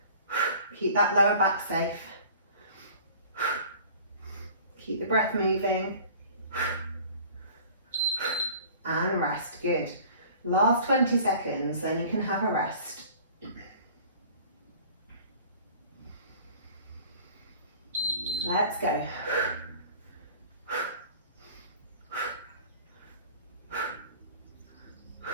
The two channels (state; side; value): inverted; both; correlation -0.47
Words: Keep that lower back safe. Keep the breath moving. And rest, good. Last 20 seconds, then you can have a rest. Let's go.